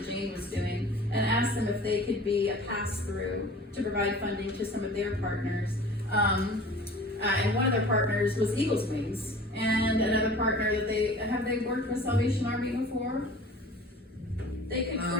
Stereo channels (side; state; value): both; normal; correlation 0.43